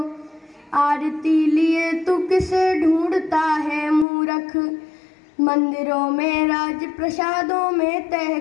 आरती लिए तू किसे ढूंढता है मूर्ख, मंदिरों में, राज प्रसादों में,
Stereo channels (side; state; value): right; drops out; at 4.0 s